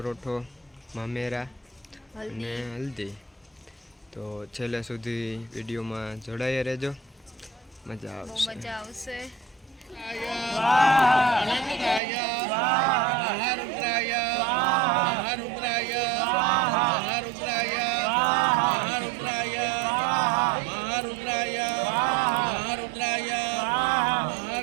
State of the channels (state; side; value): drops out; left; at 12.0 s